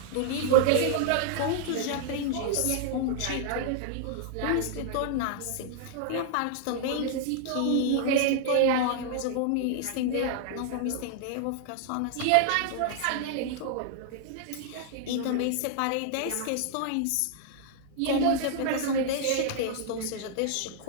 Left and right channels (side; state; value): both; different; correlation -0.01